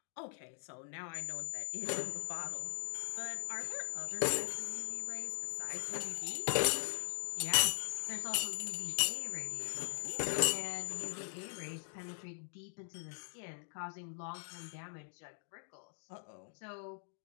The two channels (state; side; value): silent; right; digital silence